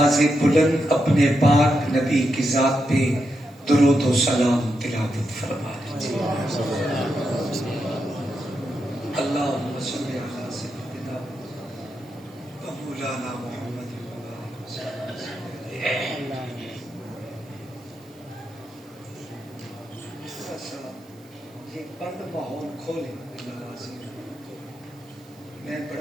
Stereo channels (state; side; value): noise; right; hiss, 29 dB below the sound